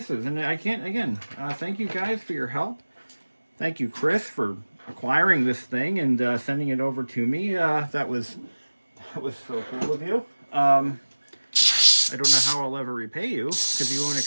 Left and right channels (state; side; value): inverted; both; correlation -1.00